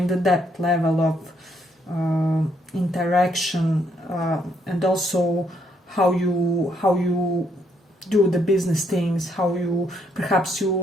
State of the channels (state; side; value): normal; both; correlation 0.72